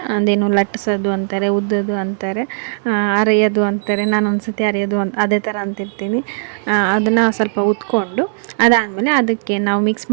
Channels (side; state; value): left; silent; digital silence